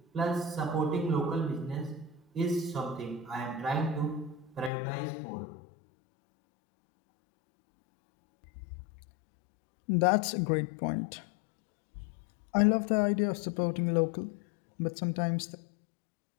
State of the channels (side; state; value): right; drops out; at 4.7 s